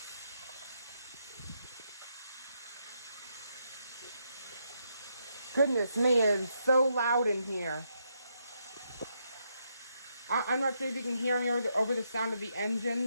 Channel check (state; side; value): inverted; both; correlation -0.79